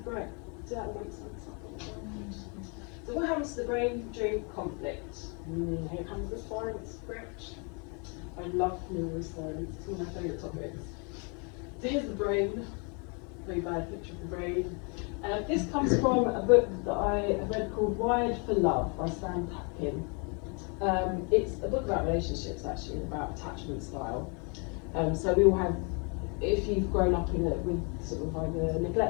brain? Does that make sense? So what happens to the brain during conflict? Here comes the science script. I love numerous science, it's one of my favourite topics. So here's the brain, very bad picture of the brain. This comes from a book that I have read called Wired for Love by Sam Tapkin. It's a book about relationships, actually, about attachment style. So we all have, if you've grown up with sort of either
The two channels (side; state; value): right; quieter; 35.4 dB